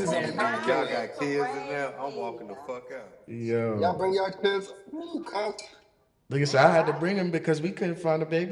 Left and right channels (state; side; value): identical; both; correlation 1.00